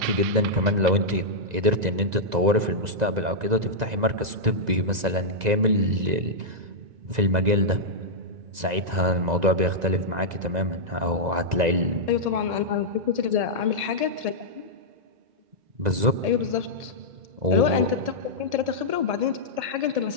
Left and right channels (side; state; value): left; late; 1.9 ms